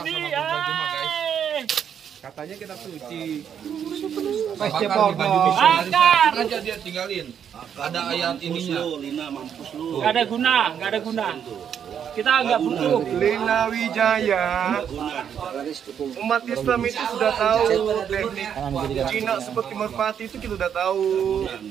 Katanya kita suci. Bakar Bakar di baju misionaris. Bakar. Aja dia tinggalin. Ada ayat ininya. Gak ada guna. Kita nggak butuh. Lina Wijaya. Umat Islam itu sudah tahu teknik Cina seperti merpati itu kita sudah tahu.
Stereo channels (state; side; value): quieter; left; 8.4 dB